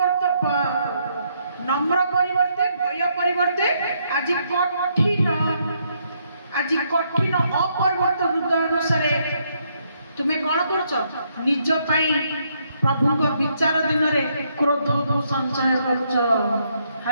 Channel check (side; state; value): both; inverted; correlation -0.74